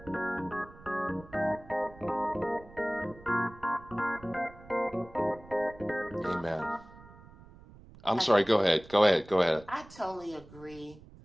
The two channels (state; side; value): noise; right; rumble, 21 dB below the sound